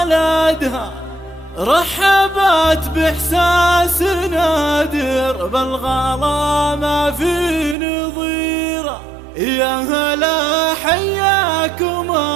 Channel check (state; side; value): drops out; left; at 7.8 s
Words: رحبت بإحساس نادر بالغلا ما في نظيره. يا هلا حياكم